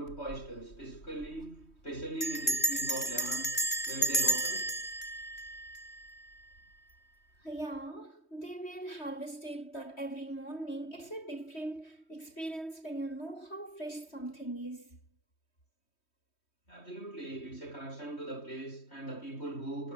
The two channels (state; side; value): late; right; 3.2 ms